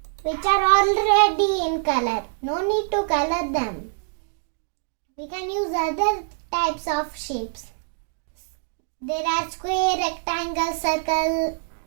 which are already in color. No need to color them. We can use other types of shapes. There are square, rectangle, circle,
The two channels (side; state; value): left; silent; digital silence